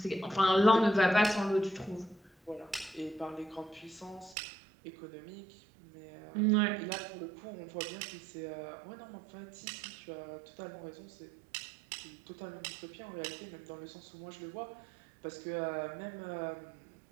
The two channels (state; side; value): drops out; left; at 4.4 s